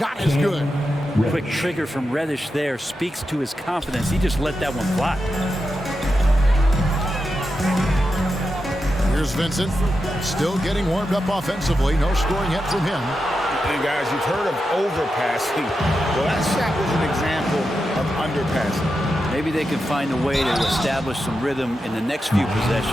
is good. Quick trigger from Reddish there speaks to his confidence. He just let that one fly. Here's Vincent, still getting warmed up offensively. No scoring yet from him. And guys, you've heard of overpassing. Well, that shot was an example of underpassing. Maybe they can find a way to establish some rhythm in the next few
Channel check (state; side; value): normal; both; correlation 0.88